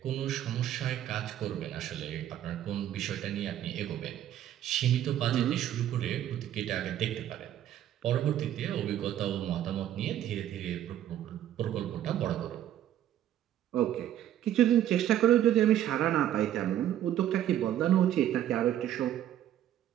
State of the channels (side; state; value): left; quieter; 11.5 dB